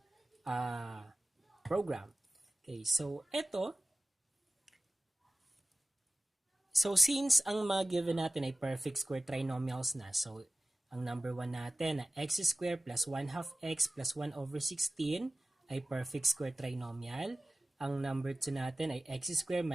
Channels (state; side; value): normal; both; correlation 0.96